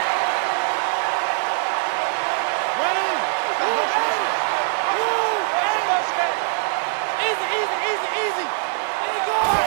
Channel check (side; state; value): left; silent; digital silence